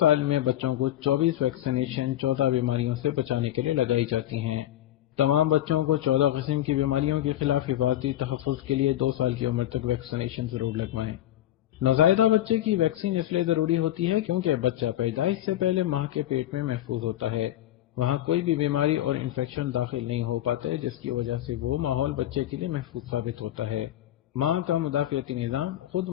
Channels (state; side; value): quieter; right; 13.1 dB